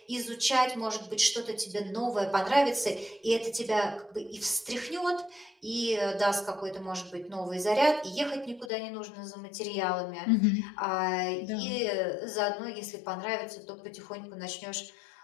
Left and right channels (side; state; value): right; drops out; at 8.7 s